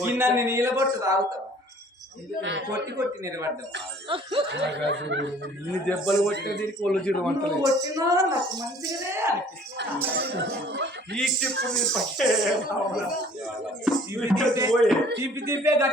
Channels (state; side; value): normal; both; correlation 0.53